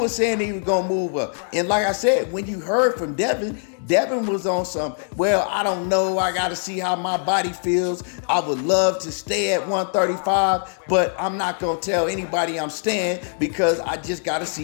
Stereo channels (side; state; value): right; silent; 62 dB below the other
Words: saying he was gonna move up. And like I said, when you heard from Devin, Devin was on some, well, I don't know, I gotta see how my body feels. I would love to stay at 135, but I'm not gonna tell anybody I'm staying because I just gotta